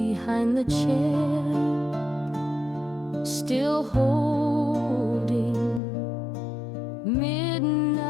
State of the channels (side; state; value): right; drops out; at 5.8 s